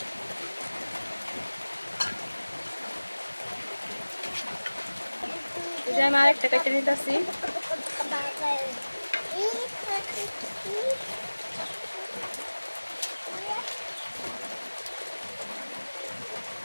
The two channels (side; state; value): both; inverted; correlation -1.00